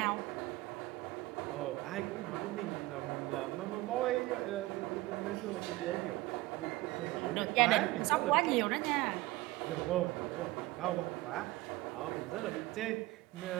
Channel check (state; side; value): quieter; left; 19.3 dB